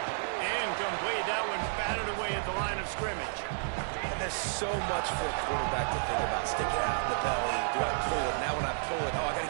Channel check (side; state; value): left; silent; 57 dB below the other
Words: Incomplete. That one batted away at the line of scrimmage. And there's so much for a quarterback to think about. Stick it out in the belly. Do I pull it? Now when I pull it, I got